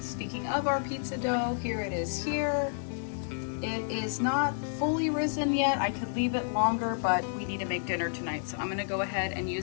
speaking of our pizza dough, here it is here. It is not fully risen yet. I could leave it longer, but we need to make dinner tonight. So I'm gonna go ahead and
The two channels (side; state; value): right; silent; digital silence